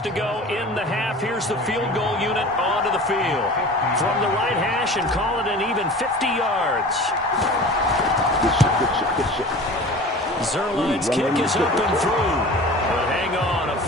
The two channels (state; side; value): normal; both; correlation 0.39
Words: to go in the half, here's the field goal unit onto the field. From the right hash and call it an even 50 yards. Good shit. Zerline's kick is up and through. But hang on, a